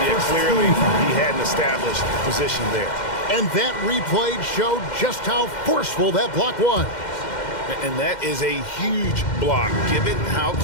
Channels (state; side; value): late; right; 2.1 ms